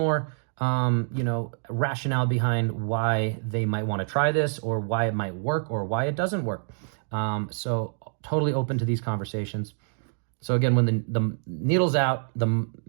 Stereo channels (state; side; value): silent; left; digital silence